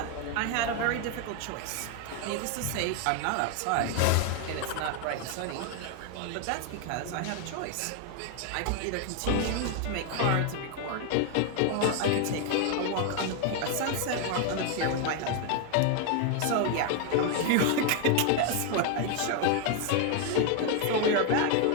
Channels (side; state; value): both; different; correlation 0.01